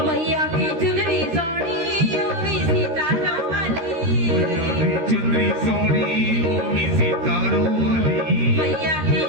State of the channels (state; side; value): late; left; 13 ms